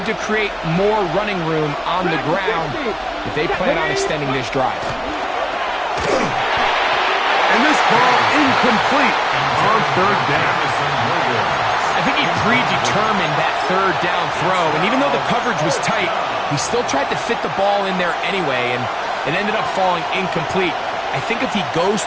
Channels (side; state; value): both; identical; correlation 1.00